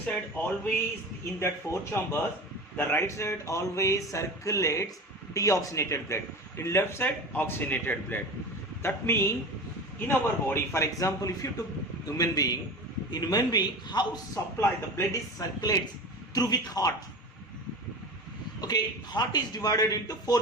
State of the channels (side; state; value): both; normal; correlation 0.31